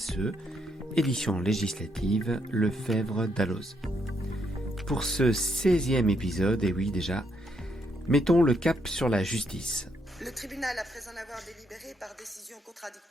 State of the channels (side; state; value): both; normal; correlation 0.76